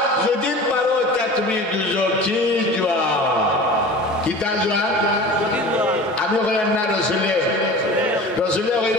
যদি পারো তা তুমি দুজকি জোয়া কিতা জোয়া আমি কইলাম না রসুলে, রসুলে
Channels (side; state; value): both; normal; correlation 0.37